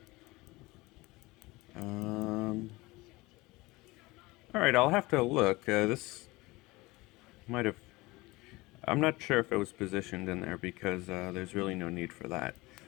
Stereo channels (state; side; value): quieter; right; 21.7 dB